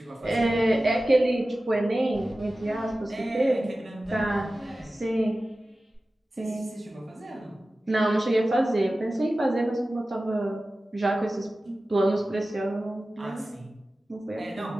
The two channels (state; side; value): normal; both; correlation 0.95